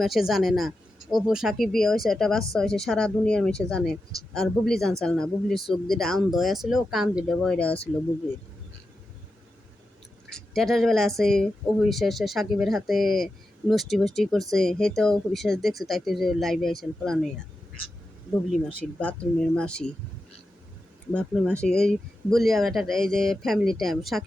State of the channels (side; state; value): both; normal; correlation 0.90